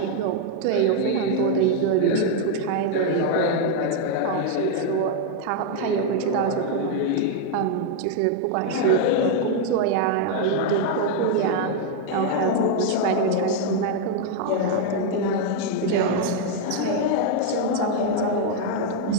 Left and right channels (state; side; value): different; both; correlation 0.00